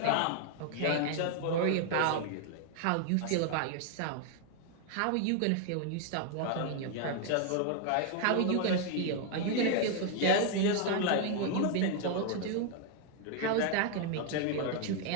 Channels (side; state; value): both; different; correlation 0.00